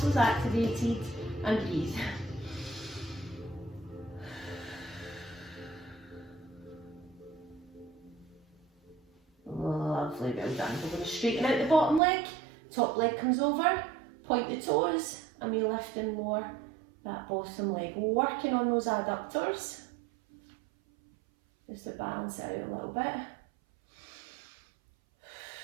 activated, and breathe. Lovely, well done. We're going to straighten out the bottom leg, top leg comes over, point the toes, and we lift and lower that bottom leg. Working on those adductors, just to balance it out a little bit.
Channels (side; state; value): left; drops out; at 12.0 s